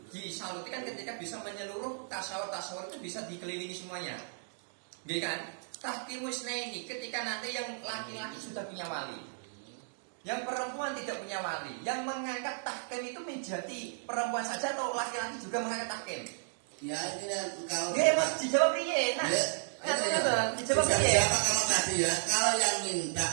disaluti kan ketika bisa menyeluruh tasawur itu bisa dikelilingi semuanya. Nggih kan? Tahkimus ini ketika nanti yang laki-laki sudah punya wali. Yang perempuan tidak punya wali. Yang mengangkat tahkim itu menjadi perempuan saja atau laki-laki juga mengangkat tahkim? Ya ini kalau Nggih, Mas dijawab piye? Nah, dijawab piye? Siapa kalau tadi ya, kalau yang minta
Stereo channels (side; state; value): left; silent; digital silence